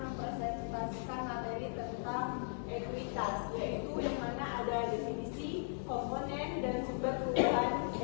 mempresentasikan materi tentang ekuitas, yaitu yang mana ada definisi, komponen, dan sumber perubahan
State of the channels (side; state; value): right; silent; digital silence